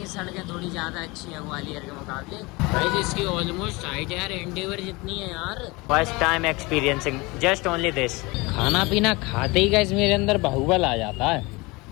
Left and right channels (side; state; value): right; quieter; 24.4 dB